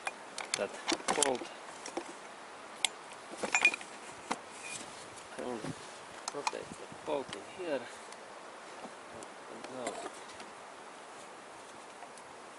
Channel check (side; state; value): both; identical; correlation 1.00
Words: that bolt. I only rotate the bolt in here, and now